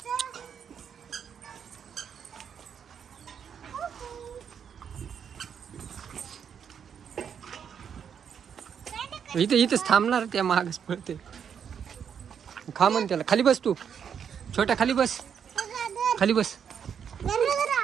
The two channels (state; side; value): quieter; left; 7.7 dB